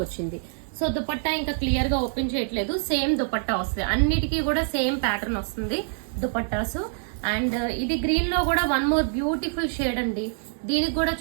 వచ్చింది. సో దుపట్టా ఇంకా క్లియర్ గా ఓపెన్ చేయట్లేదు, సేమ్ దుపట్టా వస్తుంది. అన్నిటికీ కూడా సేమ్ ప్యాటర్న్ వస్తుంది దుపట్టాసు. అండ్ ఇది గ్రీన్ లో కూడా వన్ మోర్ బ్యూటిఫుల్ షేడ్ అండి. దీనికి కూడా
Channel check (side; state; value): left; silent; 61 dB below the other